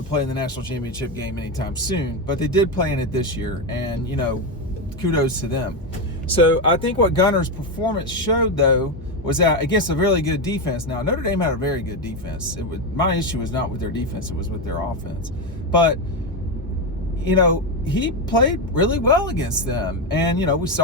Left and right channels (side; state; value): both; normal; correlation 0.10